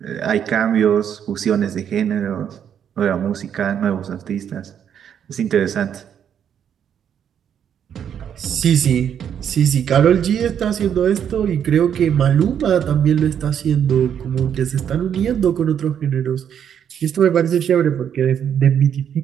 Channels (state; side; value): quieter; left; 8.7 dB